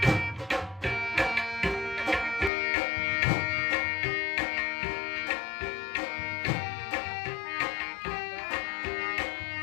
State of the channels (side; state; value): right; drops out; at 2.5 s